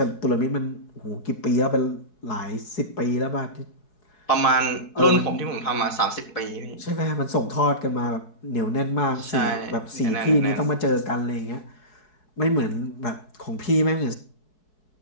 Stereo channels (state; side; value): late; right; 4.7 ms